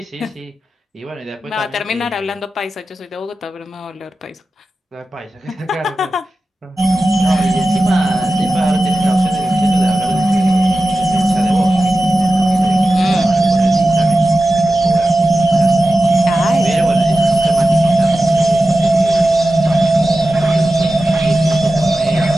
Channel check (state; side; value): normal; both; correlation 0.93